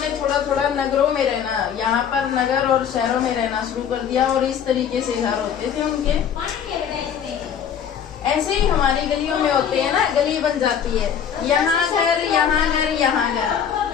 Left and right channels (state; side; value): quieter; right; 8.3 dB